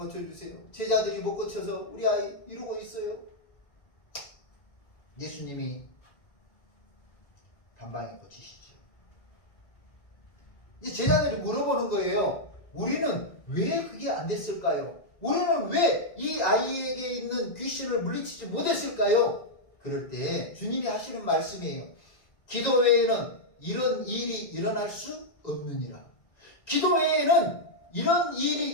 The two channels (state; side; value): late; right; 1.9 ms